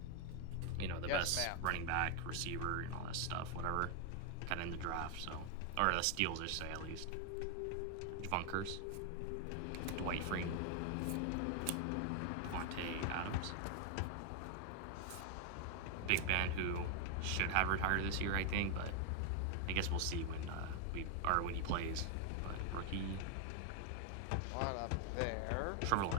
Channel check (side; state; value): both; different; correlation 0.00